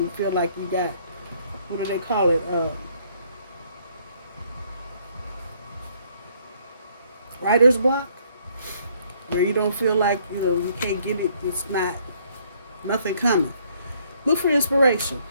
you feel like you got, what do they call it? Writer's block, where you don't feel like, you can't get it. It's nothing coming. Look for inspiration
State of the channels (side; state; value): both; inverted; correlation -0.65